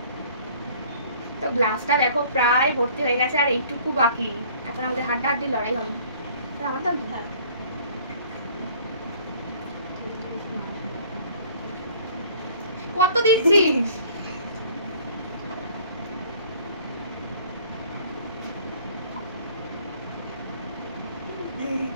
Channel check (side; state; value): both; inverted; correlation -0.54